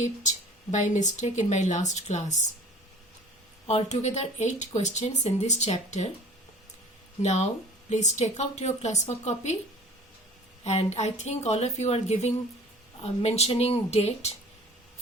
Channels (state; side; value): normal; both; correlation 0.46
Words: by mistake in my last class. Altogether 8 questions in this chapter. Now please take out your classwork copy, and I think all of you are giving mentioning date